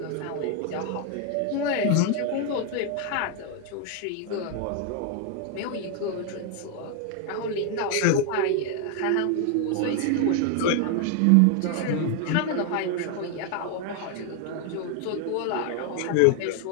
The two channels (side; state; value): both; different; correlation 0.00